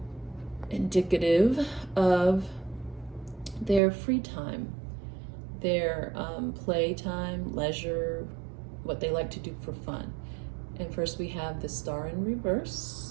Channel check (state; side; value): drops out; left; at 3.8 s